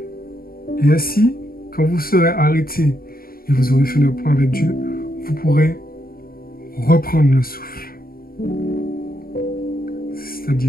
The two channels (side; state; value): right; late; 0.43 ms